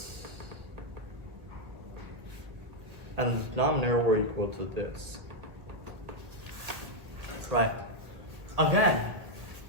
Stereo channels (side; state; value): left; late; 1.6 ms